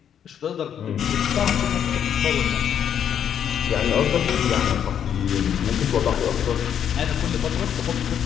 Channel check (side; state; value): right; quieter; 8.9 dB